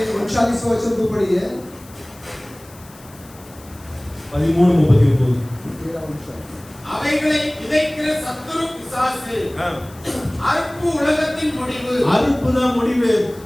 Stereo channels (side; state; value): left; noise; hiss, 23 dB below the sound